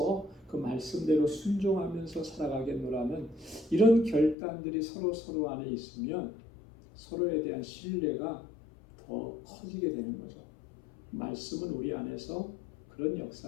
그 말씀대로 순종하면서 살아가겠노라는 이런 결단들이 서로 안에 있으면 서로에 대한 신뢰가 더 커지게 되는 거죠. 말씀은 우리 안에서 그런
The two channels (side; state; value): right; drops out; at 4.4 s